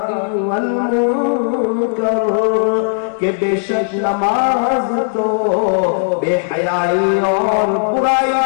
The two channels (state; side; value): silent; right; digital silence